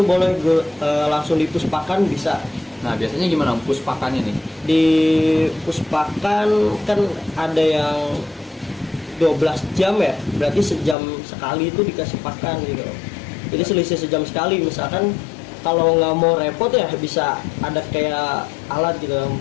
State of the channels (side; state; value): right; drops out; at 11.0 s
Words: boleh langsung dipuspakan bisa. Nah, biasanya gimana, Om, puspakannya nih? Di puspakan kan ada yang 12 jam ya, berarti sejam sekali itu dikasih pakan gitu. Jadi selisih sejam sekali. Misalkan kalau nggak mau repot ya bisa ada kayak alat gitu,